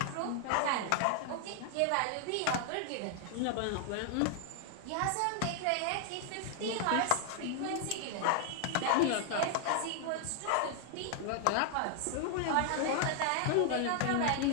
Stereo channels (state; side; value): different; both; correlation 0.00